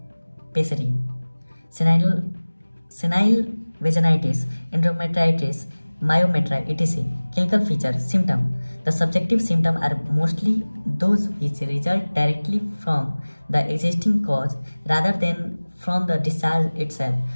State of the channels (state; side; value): inverted; both; correlation -1.00